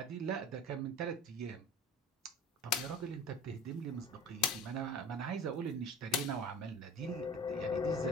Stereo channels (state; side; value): normal; both; correlation 0.40